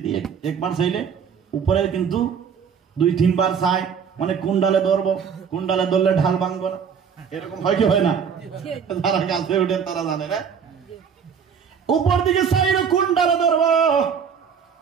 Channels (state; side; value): quieter; left; 7.0 dB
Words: একবার চাইলে উপরে, কিন্তু 2-3 বার চাই, মানে কোন ডালে ধরবো, কোন ডালে ধরলে ঢাল ভাঙবো না, এরকম হয় কি হয় না? যারা গাছে উঠে তারা জানে না। উপর দিকে চাইলো কোন ডালে ধরবো,